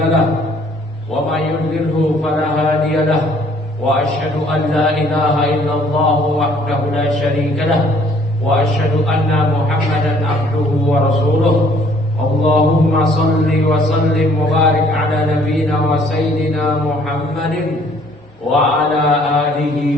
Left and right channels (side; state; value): both; normal; correlation 0.60